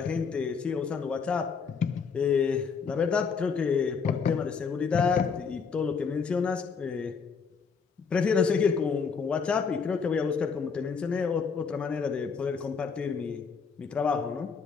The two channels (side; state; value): right; quieter; 5.7 dB